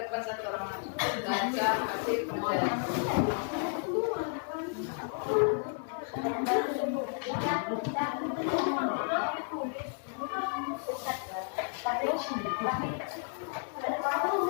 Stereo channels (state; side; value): silent; right; 56 dB below the other